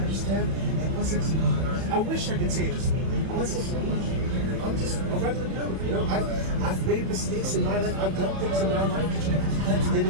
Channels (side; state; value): left; late; 31 ms